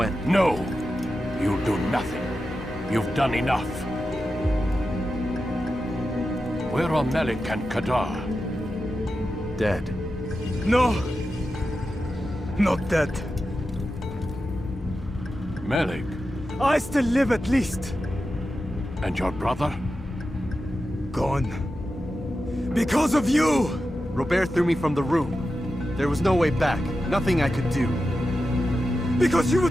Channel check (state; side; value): normal; both; correlation 0.91